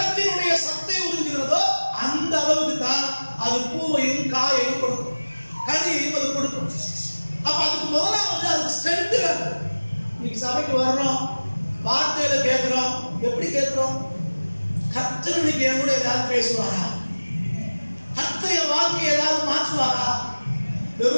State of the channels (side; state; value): both; inverted; correlation -1.00